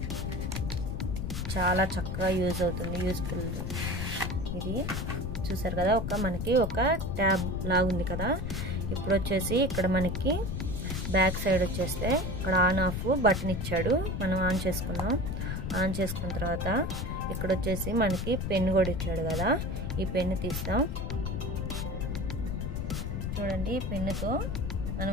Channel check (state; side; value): noise; left; rumble, 3 dB below the sound